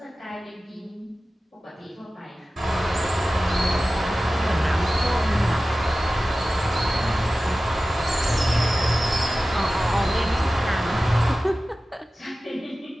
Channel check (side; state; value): both; normal; correlation 0.95